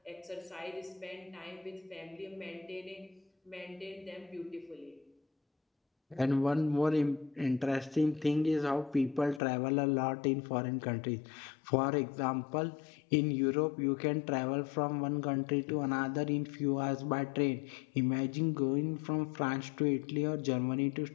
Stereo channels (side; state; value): right; drops out; at 9.4 s